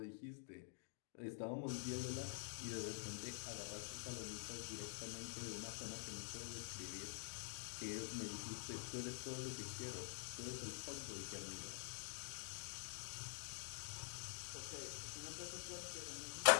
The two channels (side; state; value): right; silent; digital silence